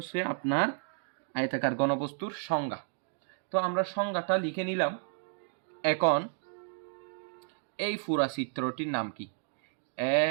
আপনার আয়তাকার ঘনবস্তুর সংজ্ঞা। তো আমরা সংজ্ঞাটা লিখে নিলাম। এখন এই পুরা চিত্রটির নাম কি? A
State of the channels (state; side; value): silent; left; digital silence